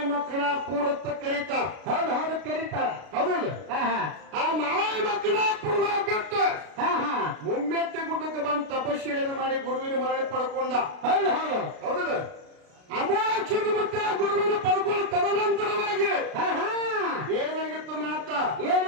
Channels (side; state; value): left; late; 33 ms